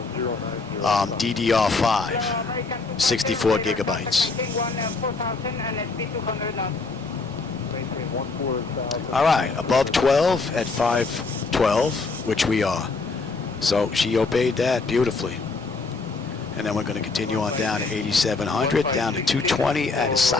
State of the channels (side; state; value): right; quieter; 3.9 dB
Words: DDR5, 64 gigabytes. All right, above 12 at 512, which we are. So she obeyed that beautifully. And then we're going to continue on down to 8,700, down to 220 at